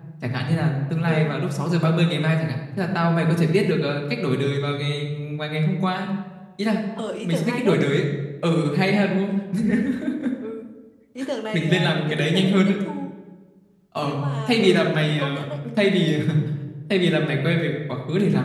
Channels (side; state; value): both; identical; correlation 1.00